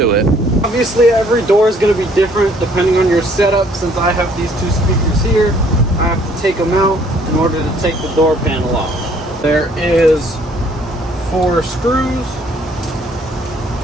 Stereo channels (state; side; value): normal; both; correlation 0.61